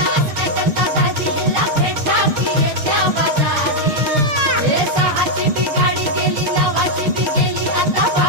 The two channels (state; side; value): late; left; 6.6 ms